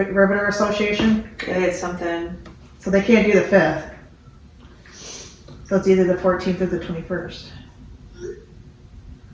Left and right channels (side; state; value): both; identical; correlation 1.00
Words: Association? They had something. So they can't do the 5th. So it's either the 14th or the 21st.